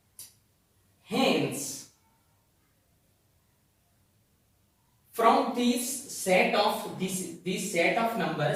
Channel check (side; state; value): both; identical; correlation 1.00